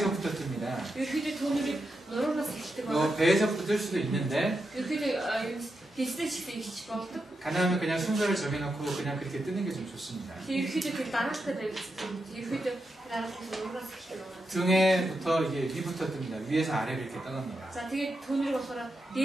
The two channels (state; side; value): normal; both; correlation 0.86